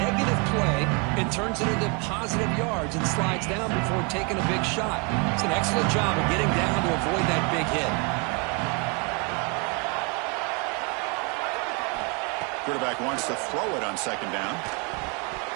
play and turns it into positive yards and slides down before taking a big shot. It's an excellent job of getting down to avoid that big hit. Quarterback wants to throw it on second down.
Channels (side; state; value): left; quieter; 33.0 dB